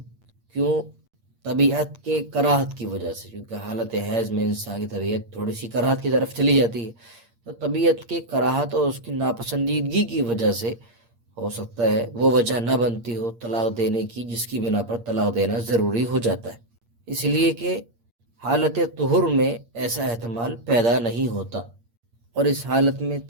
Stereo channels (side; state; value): left; late; 8.6 ms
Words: کیوں؟ طبیعت کے کراہت کی وجہ سے، کیونکہ حالت حیض میں انسان کی طبیعت تھوڑی سی کراہت کی طرف چلی جاتی ہے، تو طبیعت کے کراہت اور اس کی ناپسندیدگی کی وجہ سے ہو سکتا ہے وہ وجہ نہ بنتی ہو طلاق دینے کی، جس کی بنا پر طلاق دینا ضروری ہو جاتا ہے، اس لیے کہ حالت طہر میں ایسا احتمال پیدا نہیں ہوتا۔ اور اس حالت میں